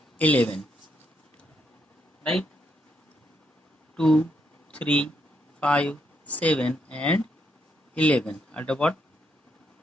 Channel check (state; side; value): normal; both; correlation 0.77